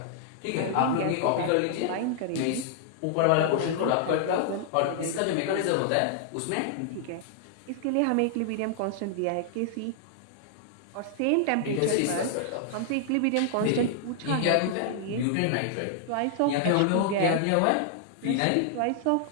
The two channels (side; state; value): both; different; correlation -0.01